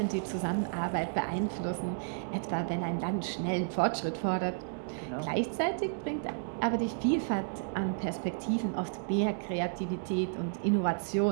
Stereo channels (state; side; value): silent; left; digital silence